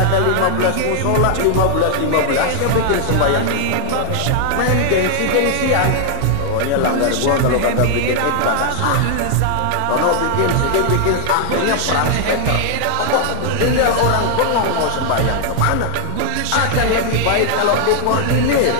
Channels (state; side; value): different; both; correlation 0.00